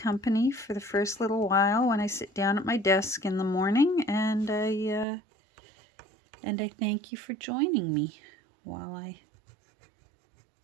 for the first little while when I sit down at my desk in the morning, and I thank you for joining me while I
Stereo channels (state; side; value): drops out; left; at 5.1 s